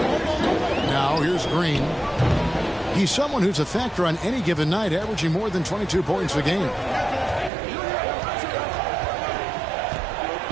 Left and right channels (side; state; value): left; drops out; at 7.5 s